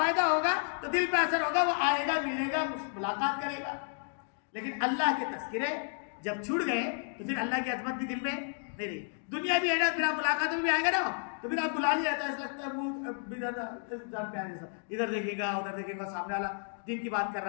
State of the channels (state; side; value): silent; right; 56 dB below the other